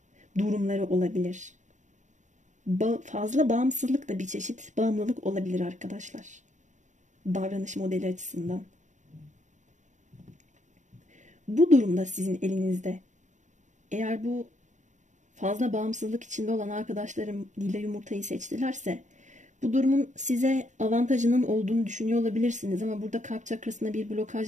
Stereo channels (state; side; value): late; left; 0.35 ms